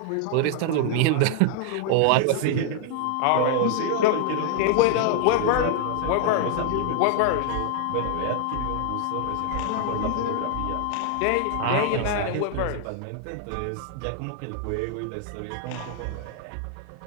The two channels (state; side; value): different; both; correlation 0.00